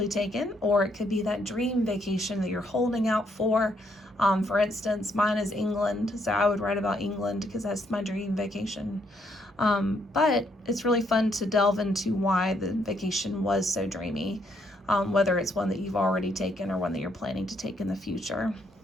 taken, or it could be that dream vacation that you're holding out for. For instance, mine is England, so I would write about England because that's my dream vacation. But it's really fun to delve into why the vacation was so dreamy, whether it's one that you've already taken or one that you're planning to take in the future.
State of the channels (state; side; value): normal; both; correlation 0.73